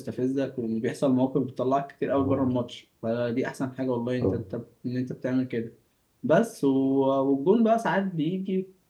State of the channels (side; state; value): both; identical; correlation 1.00